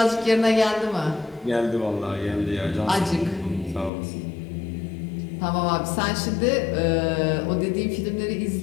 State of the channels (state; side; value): drops out; right; at 3.9 s